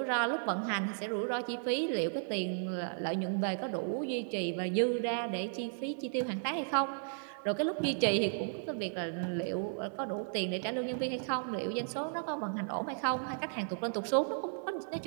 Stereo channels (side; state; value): left; silent; 55 dB below the other